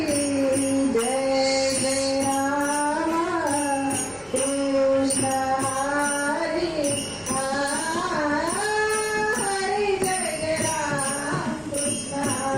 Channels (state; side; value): identical; both; correlation 1.00